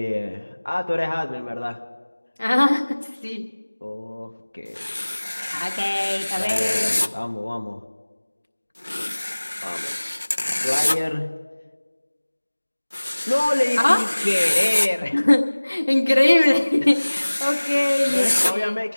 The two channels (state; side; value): inverted; both; correlation -1.00